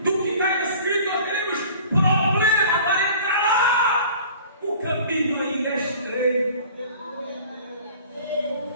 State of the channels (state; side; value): inverted; both; correlation -0.46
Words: do que está escrito, nós teremos problema para entrar lá. O caminho ainda é estreito.